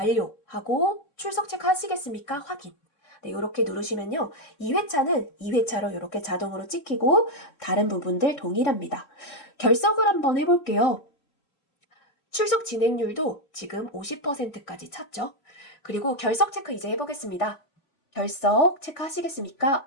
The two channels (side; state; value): right; late; 3.5 ms